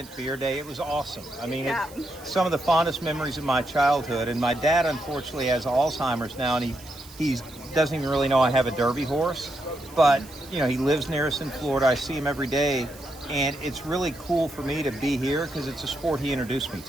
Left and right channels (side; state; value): right; noise; hiss, 21 dB below the sound